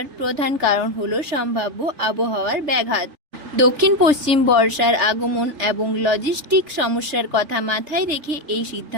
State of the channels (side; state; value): left; late; 3.4 ms